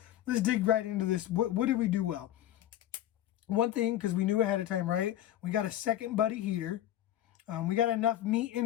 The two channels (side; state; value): right; quieter; 12.6 dB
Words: let's dig right into this. What did we do well? One thing, because we knew ahead of time, right? We got a second buddy heater. We got enough meat